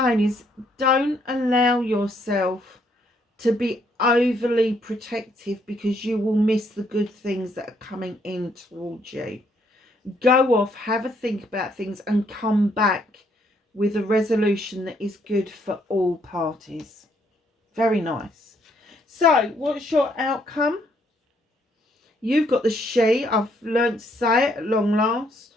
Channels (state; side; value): normal; both; correlation 0.70